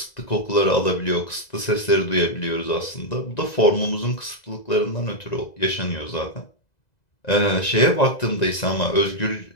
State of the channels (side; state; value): right; late; 2.0 ms